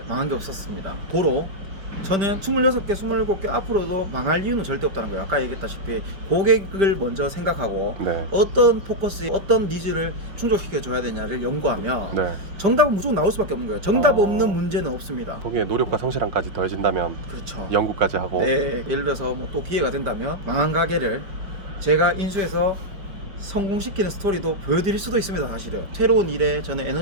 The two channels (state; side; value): late; left; 5.1 ms